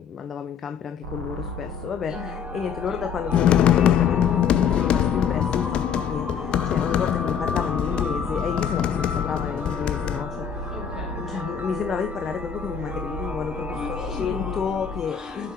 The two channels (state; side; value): quieter; right; 7.5 dB